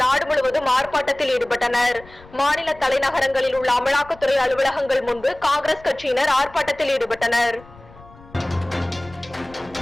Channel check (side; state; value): left; noise; rumble, 22 dB below the sound